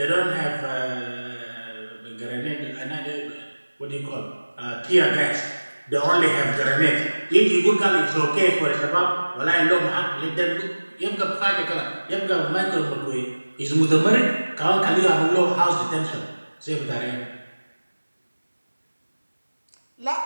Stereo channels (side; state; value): both; inverted; correlation -1.00